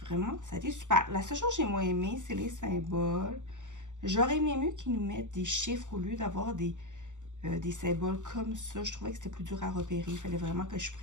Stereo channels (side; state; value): left; late; 0.86 ms